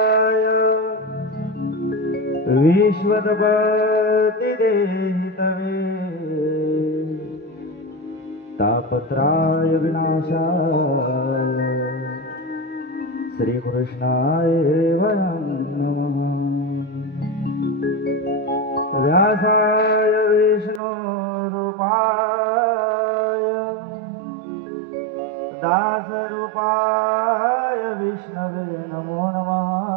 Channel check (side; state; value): left; drops out; at 20.8 s